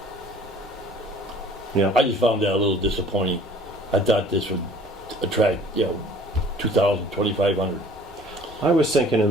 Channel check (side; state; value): both; normal; correlation 0.51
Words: Yeah. I just found that a little disappointing. I thought this would attract, 2,000, 2,500. I was thinking in